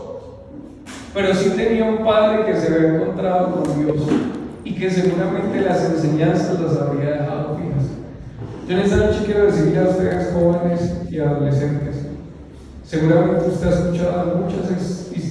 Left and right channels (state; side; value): identical; both; correlation 1.00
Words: pero sí tenía un padre que se había encontrado con Dios y que seguramente las enseñanzas las habría dejado fijas. Yo en esta noche quiero decirle a ustedes, jóvenes y adolescentes, seguramente usted ha escuchado muchas